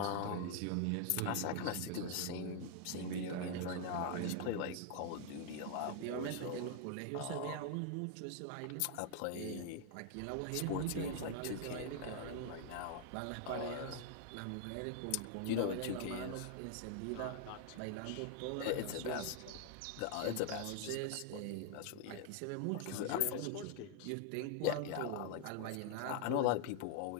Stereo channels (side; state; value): both; different; correlation 0.00